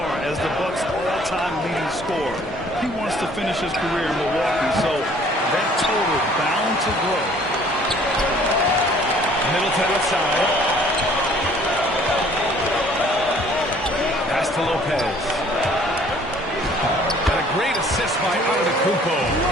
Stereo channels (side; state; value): both; normal; correlation 0.56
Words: as the Bucks' all-time leading scorer. He wants to finish his career in Milwaukee, so that total bound to grow. Middleton outside. Pass to Lopez. And a great assist by Antetokounmpo.